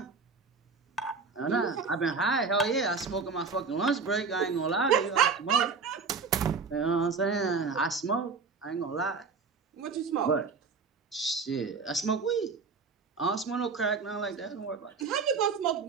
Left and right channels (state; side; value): quieter; left; 4.9 dB